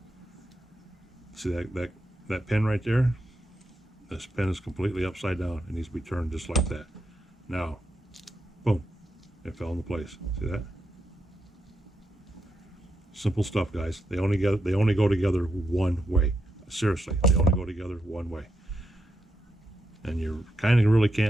See that pin right there? This pin is completely upside down. It needs to be turned just like that. Now, boom, it fell into place. See that? Simple stuff, guys. They only go together one way. Seriously, they only go together one way. And you kind of really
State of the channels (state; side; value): normal; both; correlation 0.83